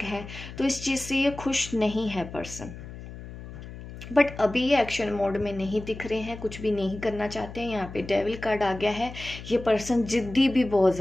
हैं तो इस चीज़ से ये खुश नहीं है पर्सन। बट अभी ये एक्शन मोड में नहीं दिख रहे हैं, कुछ भी नहीं करना चाहते हैं। यहाँ पे डेविल कार्ड आ गया है, ये पर्सन जिद्दी भी बहुत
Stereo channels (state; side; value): noise; left; hum, 13 dB below the sound